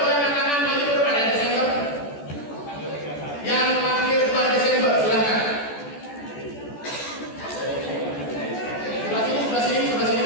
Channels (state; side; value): late; right; 14 ms